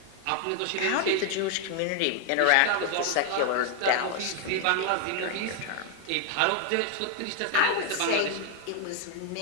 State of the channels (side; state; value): both; different; correlation 0.00